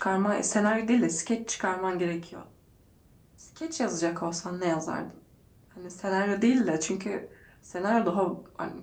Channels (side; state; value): both; identical; correlation 1.00